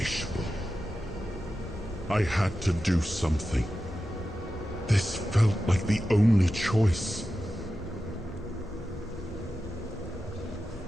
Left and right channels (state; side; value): normal; both; correlation 0.92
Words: I had to do something. This felt like the only choice.